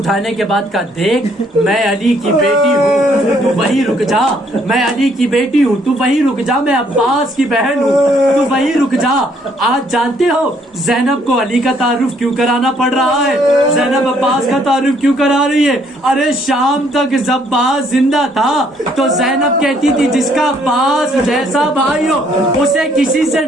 کے بعد کہا دیکھ میں علی کی بیٹی ہوں، تو وہیں رک جا، میں علی کی بیٹی ہوں، تو وہیں رک جا، میں عباس کی بہن ہوں، تو وہیں رک جا۔ آج جانتے ہو زینب کو علی کا تعارف کیوں کرانا پڑ رہا ہے؟ زینب عباس کا تعارف کیوں کرا رہی ہے؟ ارے شام تک جب عباس زندہ تھا تو زینب کہتی تھی جس کا عباس جیسا بھائی ہو اسے کسی سے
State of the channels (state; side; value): normal; both; correlation 0.66